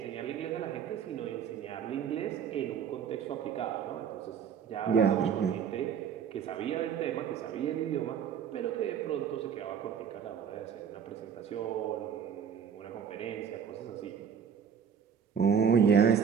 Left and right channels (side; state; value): left; quieter; 7.5 dB